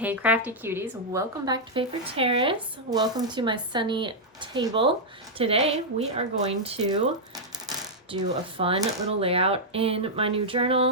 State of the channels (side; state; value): both; normal; correlation -0.05